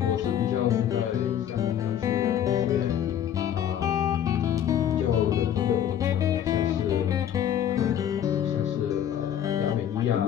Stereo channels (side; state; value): right; quieter; 9.9 dB